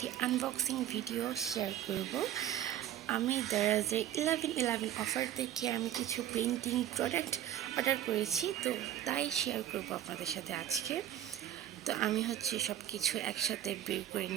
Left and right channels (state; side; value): quieter; left; 11.7 dB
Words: আনবক্সিং ভিডিও শেয়ার করব। আমি দারাজের 11/11 অফার থেকে আমি কিছু পেন্টিং প্রোডাক্ট অর্ডার করেছি, তো তাই শেয়ার করব আপনাদের সাথে আজকে। তো আমি সব কিছু একসাথে বের করে